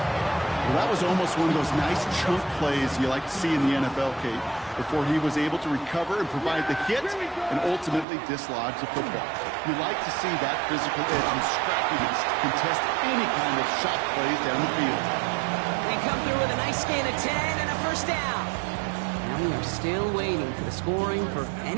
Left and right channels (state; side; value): drops out; left; at 8.1 s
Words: Well, that was almost one of those nice chunk plays you like to see in the NFL, Kate, before he was able to recover and provide the hit and ultimately dislodge the football. You like to see that physical edge and scrappiness to contest any kind of shot plays down the field. They come through with a nice gain of 10 and a first down. Now we are still waiting for the scoring for